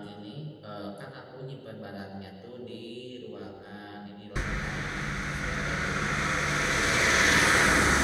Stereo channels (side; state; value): both; identical; correlation 1.00